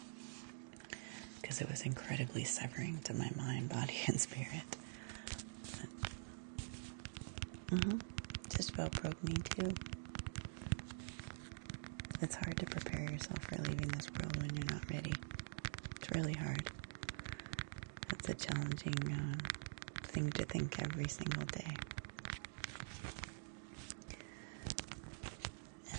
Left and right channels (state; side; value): silent; left; digital silence